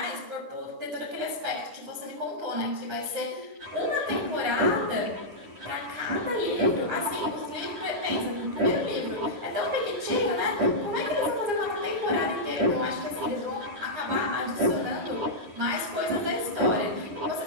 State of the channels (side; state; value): left; late; 9.8 ms